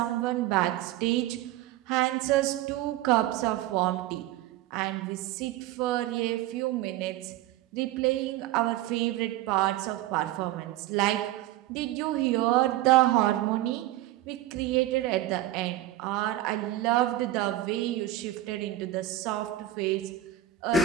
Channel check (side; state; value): left; quieter; 14.1 dB